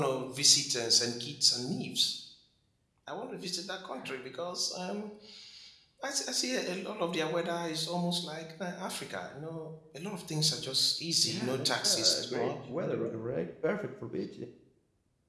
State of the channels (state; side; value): identical; both; correlation 1.00